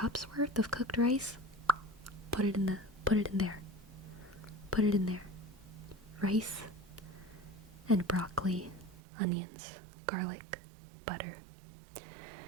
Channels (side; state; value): left; drops out; at 9.0 s